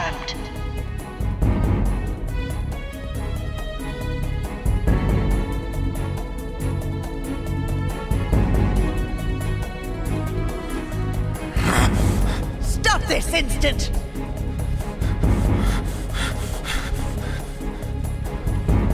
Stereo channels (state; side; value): identical; both; correlation 1.00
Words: Stop this instant!